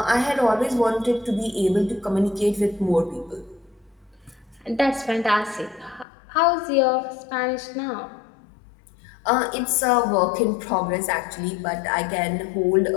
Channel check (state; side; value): drops out; right; at 6.1 s